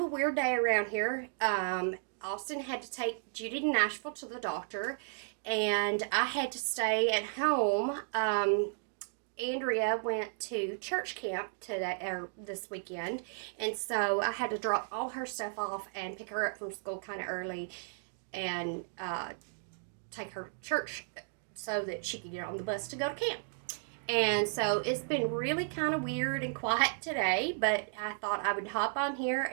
weird day around here. Austin had to take Judy to Nashville to the doctor, and I had to stay at home. Andrea went to church camp today or this weekend, and so I had to drop all her stuff off and pick her up from school kind of early and take her to church so that she could get on the bus to go to camp. And so it's been really kind of weird and quiet today, but I thought I would hop on here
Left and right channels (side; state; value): left; silent; digital silence